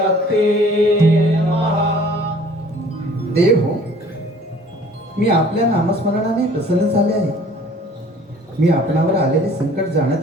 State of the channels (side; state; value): both; normal; correlation 0.52